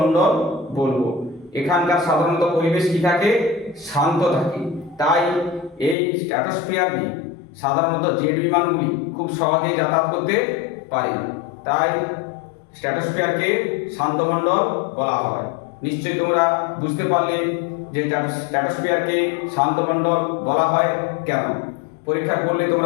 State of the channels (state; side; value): drops out; right; at 6.0 s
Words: বলবো। এখানকার সাধারণত পরিবেশ কি থাকে? শান্ত থাকে। তাই এই স্ট্র্যাটোস্ফিয়ার নিয়ে সাধারণত জেট বিমানগুলি খুব সহজেই যাতায়াত করতে পারে। তাই স্ট্র্যাটোস্ফিয়ারকে শান্তমণ্ডল বলা হয়। নিশ্চয়ই তোমরা বুঝতে পারলে যে স্ট্র্যাটোস্ফিয়ারকে শান্তমণ্ডল বলা হয় কেন। পরীক্ষা করলে